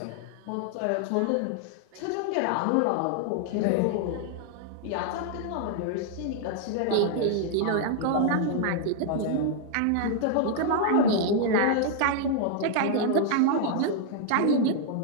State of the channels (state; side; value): different; both; correlation -0.01